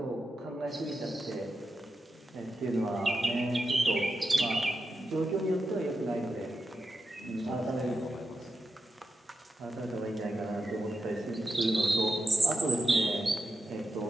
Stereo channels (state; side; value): normal; both; correlation 0.89